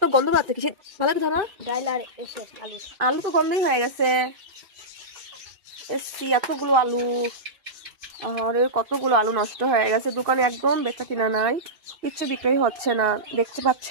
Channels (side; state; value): left; late; 2.6 ms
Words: গন্ধ পাচ্ছে কিসে, ভালো কি ধরো। আলু তো গন্ধই হয়ে গেছে। এসছি এতগুলো আলু, আর কতগুলো আলু নষ্ট হয়ে গেছে। দোকানে একদম বেচা কিনা নাই, কিচ্ছু বিক্রি হচ্ছে না। দেখতে